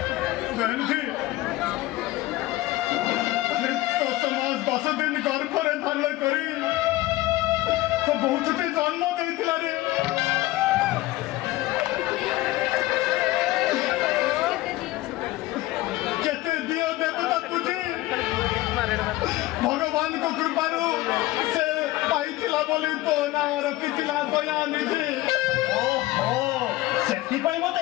बहन जी तो समाज 10 दिन घर पर धारण करी तो बहुत टे जन्म देथिला रे केते दियो देवता पूजी भगवान को कृपारू से पाइथिला बोली तो ना रखिथिला दया निधि ओहो सेति पई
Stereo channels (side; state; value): right; quieter; 17.6 dB